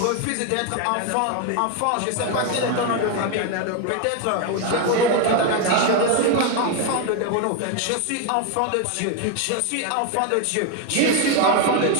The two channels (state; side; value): different; both; correlation 0.01